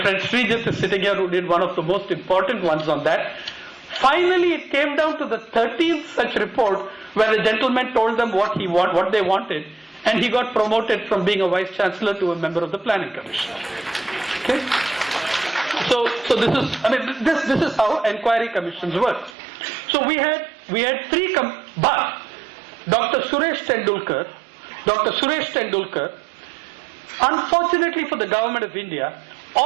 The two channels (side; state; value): left; drops out; at 19.4 s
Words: friend Srijit is sitting here, who did one of the most important ones on that. Finally, it came down to the 13th such report where the gentleman told them what they wanted, and he got promoted from being a vice chancellor to a member of the Planning Commission. Okay. So this is how inquiry commissions work. So we had 3 but Dr. Suresh Tendulkar, unfortunately for the government of India,